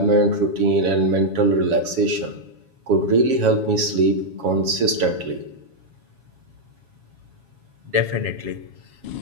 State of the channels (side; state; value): left; late; 7.2 ms